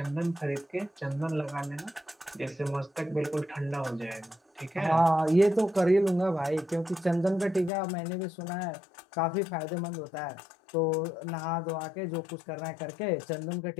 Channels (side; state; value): right; drops out; at 7.7 s